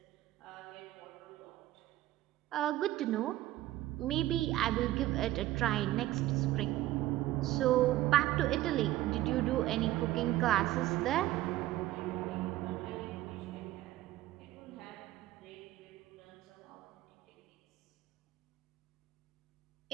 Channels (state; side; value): quieter; left; 15.4 dB